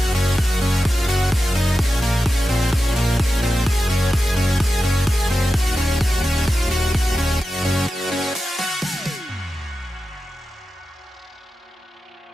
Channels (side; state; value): both; normal; correlation 0.92